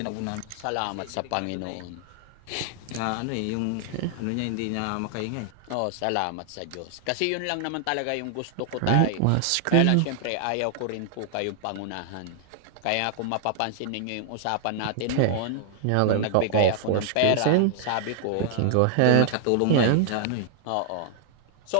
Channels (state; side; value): different; both; correlation 0.00